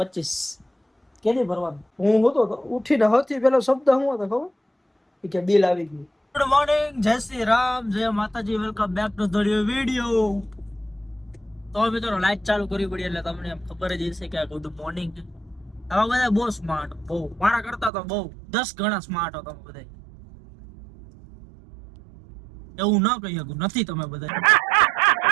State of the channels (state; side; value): drops out; left; at 17.9 s